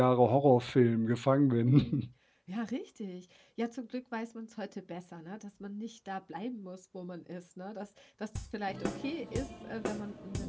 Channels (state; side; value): identical; both; correlation 1.00